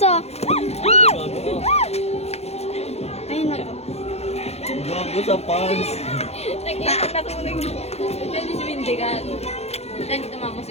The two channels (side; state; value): right; late; 0.31 ms